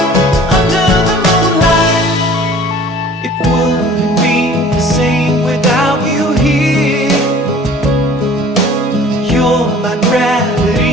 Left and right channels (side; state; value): both; normal; correlation 0.49